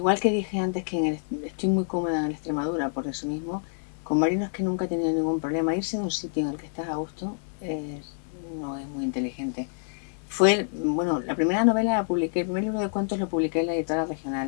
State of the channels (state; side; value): silent; right; 60 dB below the other